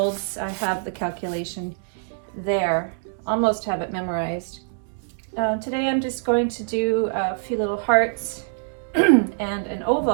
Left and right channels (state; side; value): silent; left; digital silence